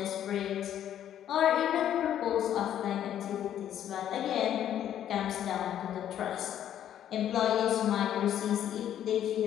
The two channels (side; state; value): right; quieter; 10.7 dB